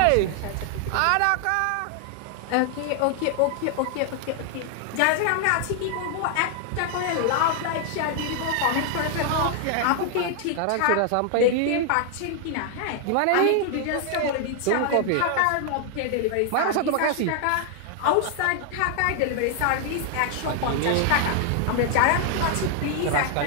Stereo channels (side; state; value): both; different; correlation 0.00